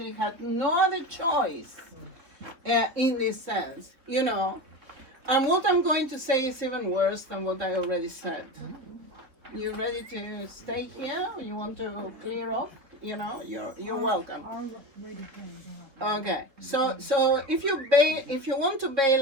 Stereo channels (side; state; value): left; late; 3.9 ms